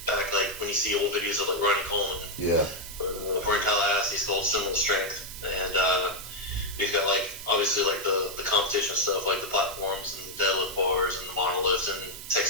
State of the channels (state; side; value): noise; right; hiss, 12 dB below the sound